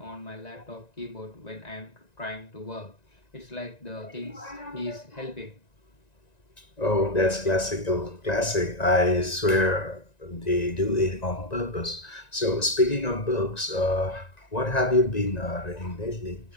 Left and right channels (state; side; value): late; right; 1.9 ms